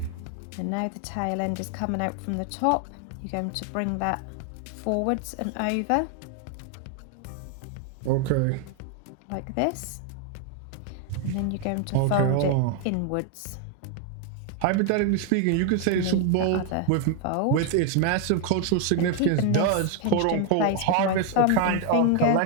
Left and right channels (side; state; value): both; different; correlation 0.00